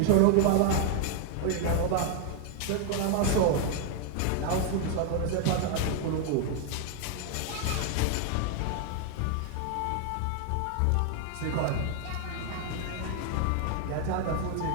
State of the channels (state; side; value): different; both; correlation 0.00